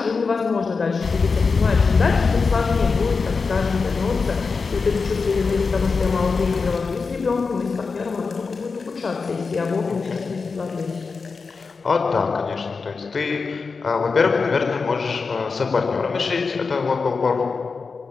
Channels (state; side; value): quieter; right; 4.7 dB